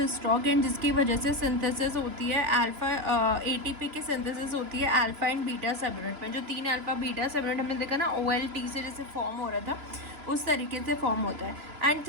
stock, and जिसकी वजह से सिंथेसिस होती है अल्फा, एटीपी की सिंथेसिस होती है अल्फा एंड बीटा सब यूनिट में। जो 3 अल्फा बीटा सब यूनिट हमने देखा ना OLT से जैसे फॉर्म हो रहा था, उस तरीके से फॉर्म होता है। एंड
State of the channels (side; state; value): left; late; 3.0 ms